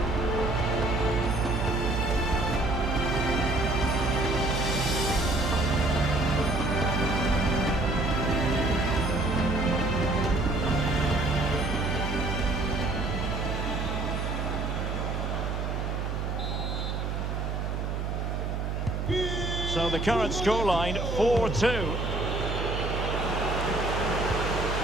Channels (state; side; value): noise; right; hum, 2 dB below the sound